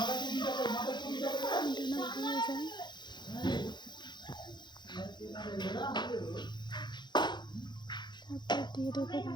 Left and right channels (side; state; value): right; late; 0.21 ms